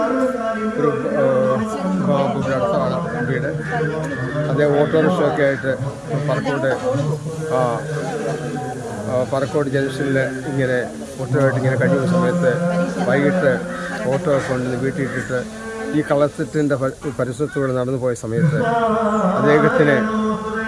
ഒരു അടുത്താണ് വീട്. അതേ ഓട്ടോറിക്ഷയൊക്കെ ആയിട്ട് പറക്കോട് ജംഗ്ഷനിൽ ഇങ്ങനെ ഓട്ടോയായിട്ട് ഇങ്ങനെ കഴിയുന്ന സമയത്ത് വൈകിട്ട് ഓട്ടോ കൊണ്ടുവന്ന് വീട്ടിലിട്ടിട്ട് ഈ കളത്തിൻ്റെ പരിസരത്തൂടെ നടന്നു പോയ സമയത്ത് അദ്ദേഹത്തിന്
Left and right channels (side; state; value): both; identical; correlation 1.00